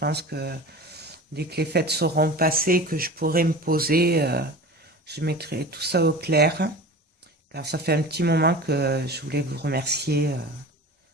que dès que les fêtes seront passées, que je pourrai me poser, je mettrai tout ça au clair, car ça fait un petit moment que je voulais vous remercier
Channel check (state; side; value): normal; both; correlation 0.35